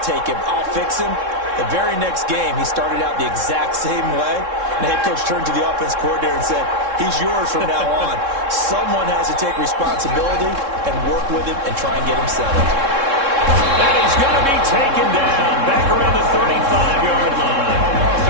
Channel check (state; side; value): late; left; 3.7 ms